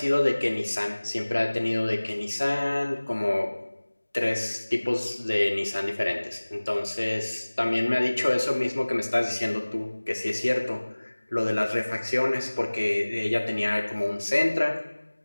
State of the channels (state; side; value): inverted; both; correlation -1.00